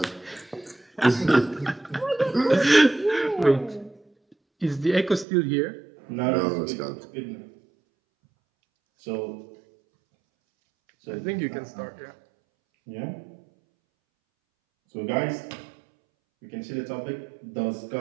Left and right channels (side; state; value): left; drops out; at 5.2 s